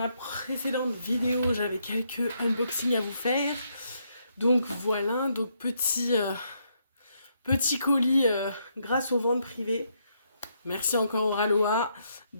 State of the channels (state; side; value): inverted; both; correlation -0.76